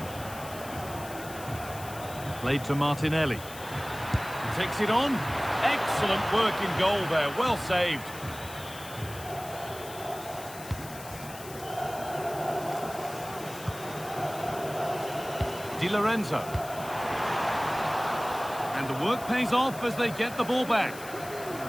Played to Martinelli. Takes it on. Excellent work in goal there. Well saved. Di Lorenzo. And the work pays off as they get the ball back.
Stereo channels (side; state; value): left; noise; hiss, 15 dB below the sound